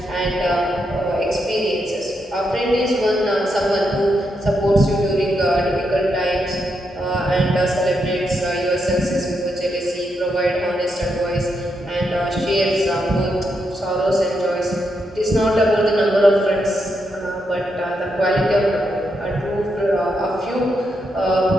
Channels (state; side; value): normal; both; correlation 0.82